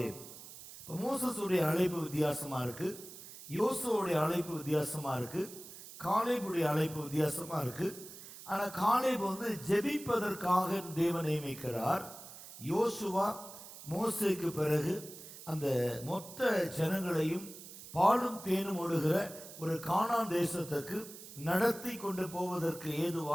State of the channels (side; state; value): right; noise; hiss, 15 dB below the sound